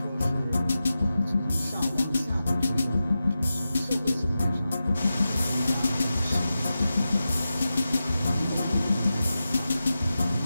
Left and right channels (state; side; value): inverted; both; correlation -0.92